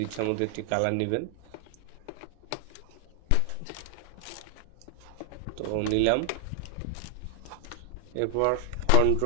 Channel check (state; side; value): different; both; correlation 0.00